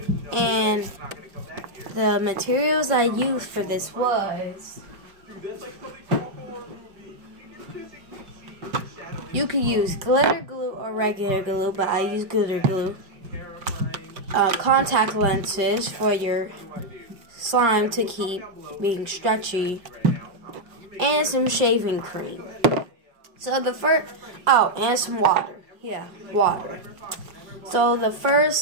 And the materials I used for this was, you could use glitter glue or regular glue, but I use glitter glue. Contact lenses for your slime to keep being stretchy, and some shaving cream. So the first, and some water. Yeah, water. So the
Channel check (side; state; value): left; late; 5.7 ms